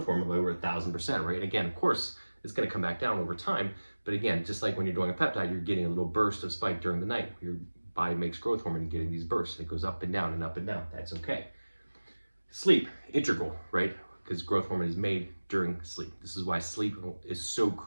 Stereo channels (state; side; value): inverted; both; correlation -1.00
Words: hormone by over 1,000%, right? And again, of course, it's going to come back down over time. But again, just like when you're doing a peptide, you're getting a little burst of spike during the night. Your body makes growth hormone and getting these bursts. It goes up and down and up and down. That's okay. Sleep, integral, right? Because growth hormone is made during sleep. This is why sleep is so